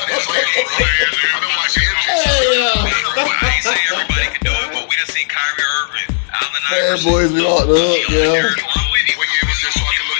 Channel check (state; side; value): silent; right; digital silence